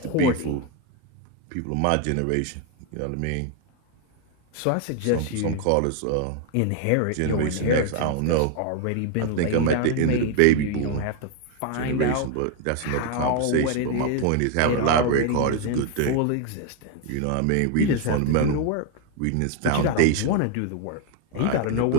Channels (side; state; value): both; different; correlation 0.01